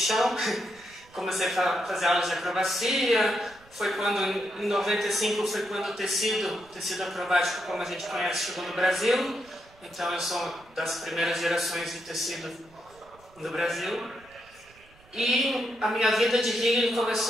comecei a fazer aulas de acrobacia. Foi quando, em 95, foi quando o tecido acrobático, como a gente conhece, chegou no Brasil. Então eu sou das primeiras gerações de tecido no Brasil. E a minha vida de healing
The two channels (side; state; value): right; noise; rumble, 28 dB below the sound